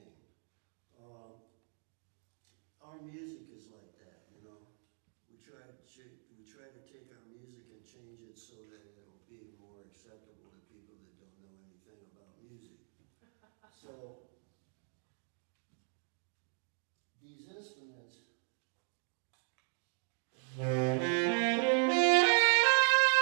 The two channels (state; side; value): silent; left; 52 dB below the other